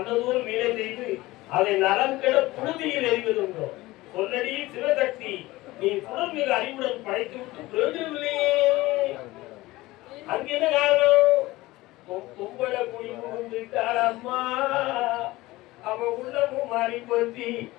வீணை செய்து அதை நலம் கெட புழுதியில் எறிவதுண்டோ சொல்லடி சிவசக்தி நீ சுடர் மிக அறிவுடன் படைத்து விட்டு பிரயோஜனம் இல்லையே. அங்க என்ன காரணம்? கும்பல குடி புகுந்துட்டாளம்மா. அவன் உள்ளமும் மாறி போச்சு,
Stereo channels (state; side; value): quieter; right; 19.0 dB